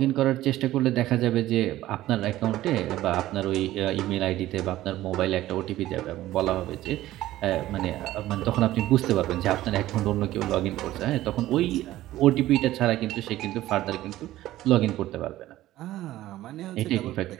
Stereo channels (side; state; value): left; quieter; 15.1 dB